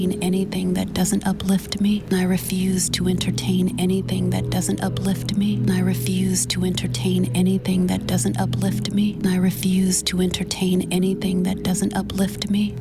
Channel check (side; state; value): both; identical; correlation 1.00